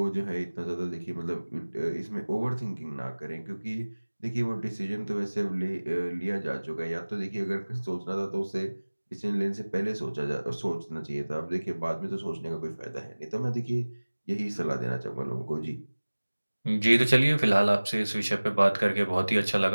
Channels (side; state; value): both; inverted; correlation -1.00